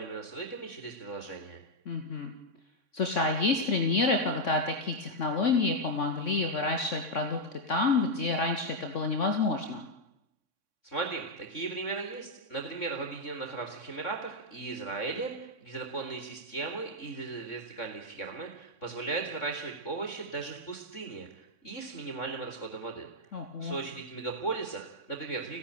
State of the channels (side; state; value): right; late; 3.6 ms